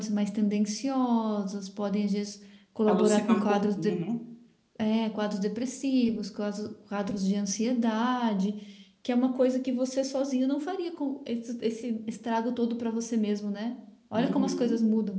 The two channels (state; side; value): identical; both; correlation 1.00